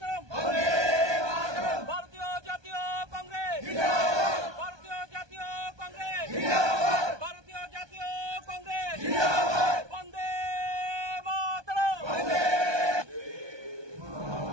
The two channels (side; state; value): left; late; 1.2 ms